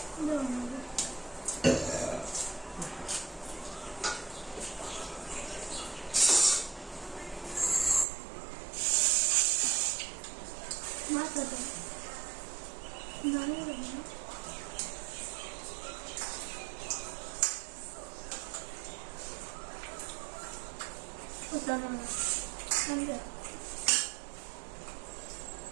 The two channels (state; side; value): drops out; left; at 8.1 s